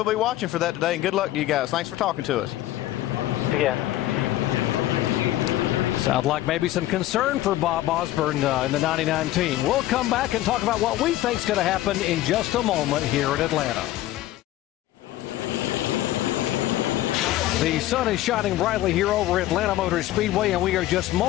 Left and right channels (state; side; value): quieter; right; 14.9 dB